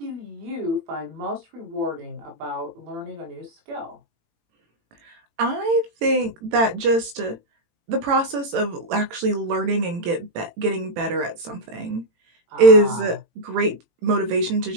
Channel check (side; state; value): left; late; 18 ms